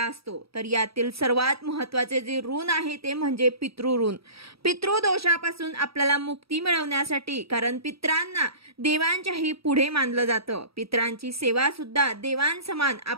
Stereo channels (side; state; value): left; late; 0.77 ms